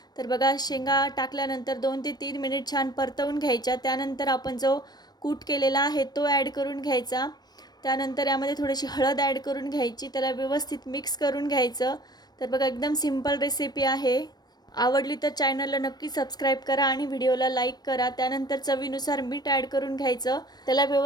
तर बघा शेंगा टाकल्यानंतर 2 ते 3 मिनिट छान परतवून घ्यायच्या. त्यानंतर आपण जो कूट केलेला आहे तो ॲड करून घ्यायचा. त्यानंतर यामध्ये थोडीशी हळद ॲड करून घ्यायची. त्याला व्यवस्थित मिक्स करून घ्यायचं. तर बघा एकदम सिंपल रेसिपी आहे. आवडली तर चॅनलला नक्की सबस्क्राईब करा आणि व्हिडिओला लाईक करा. त्यानंतर चवीनुसार मीठ ॲड करून घ्यायचं. त्याला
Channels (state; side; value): late; right; 0.19 ms